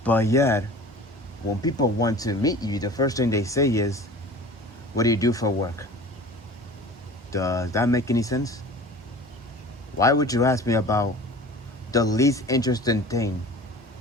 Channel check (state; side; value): normal; both; correlation 0.41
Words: But yet, when people want to meet you, the first thing they say is, what do you do for work? Does that make any sense? Why would you ask me about the least interesting thing